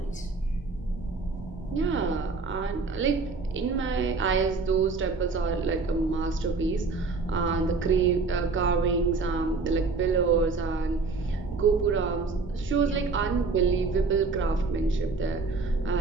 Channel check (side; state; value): left; quieter; 4.2 dB